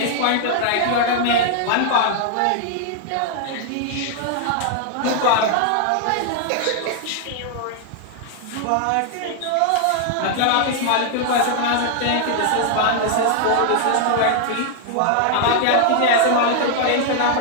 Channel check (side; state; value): both; different; correlation 0.00